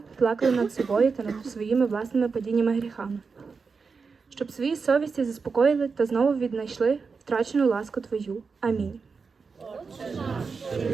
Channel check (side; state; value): left; quieter; 5.0 dB